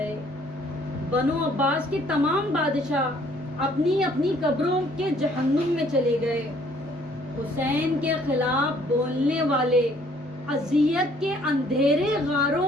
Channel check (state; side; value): normal; both; correlation 0.61